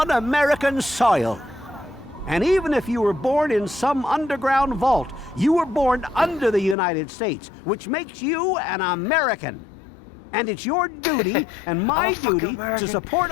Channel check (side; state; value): right; drops out; at 6.8 s